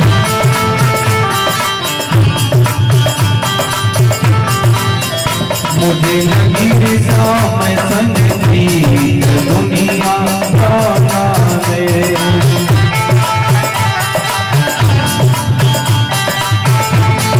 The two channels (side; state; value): both; identical; correlation 1.00